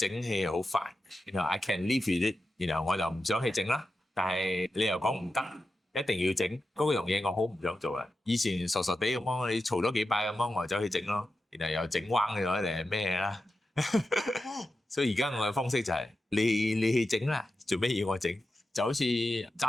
氣好煩，然後 I can live with it， 然後我就唔想去整啦。但係你又講唔得，一定要整嗰樣嘢，我好唔想做啊！以前傻傻地咁樣，你嘈咗幾拜咁樣，我就走去整咯，然後又整彎咗定係咩啦？所以而家我嘅方式就係你去整啦，做咩要我整？就好似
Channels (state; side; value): normal; both; correlation 0.91